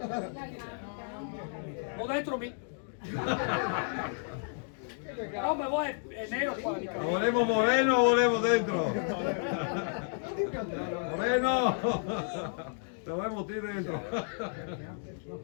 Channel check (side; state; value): right; silent; digital silence